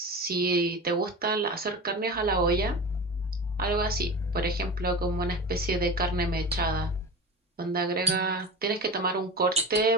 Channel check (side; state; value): both; normal; correlation 0.30